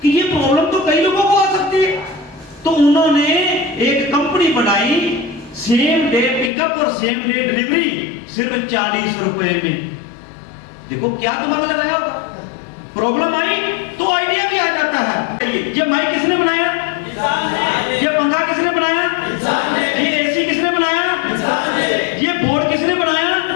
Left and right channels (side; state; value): right; drops out; at 6.5 s